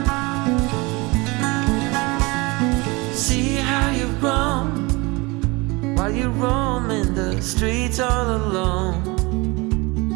While you roam in the streets all alone,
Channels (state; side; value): quieter; left; 25.1 dB